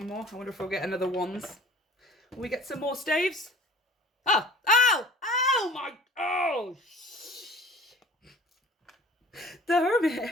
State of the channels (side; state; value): both; normal; correlation 0.46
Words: more. I wonder if we'll get another Wands. Will we get some more Staves? Oh! Oh! Oh my... Oh! The